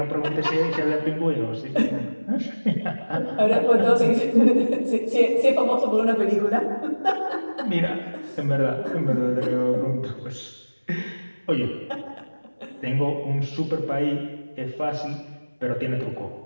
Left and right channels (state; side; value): inverted; both; correlation -1.00